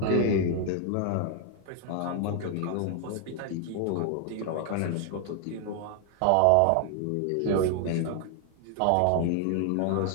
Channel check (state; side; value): different; both; correlation 0.00